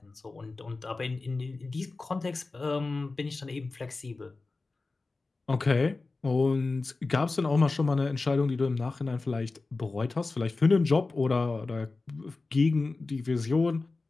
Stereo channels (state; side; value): quieter; right; 3.6 dB